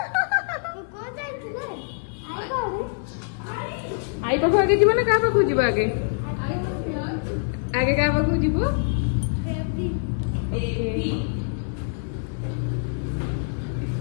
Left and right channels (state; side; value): silent; right; digital silence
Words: आई पाख आगे जीव ना क्या पाख जीव आगे आगे क्या पाख जीव